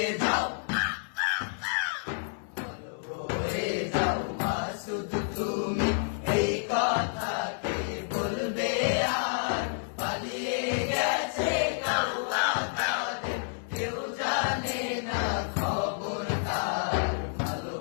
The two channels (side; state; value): right; silent; 58 dB below the other